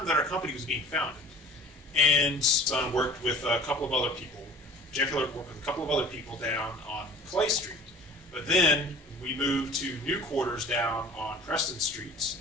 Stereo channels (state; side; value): normal; both; correlation 0.45